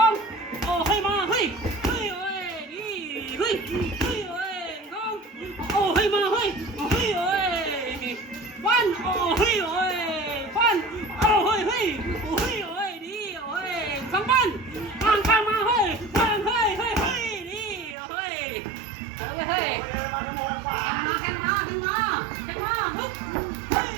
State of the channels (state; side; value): drops out; left; at 17.9 s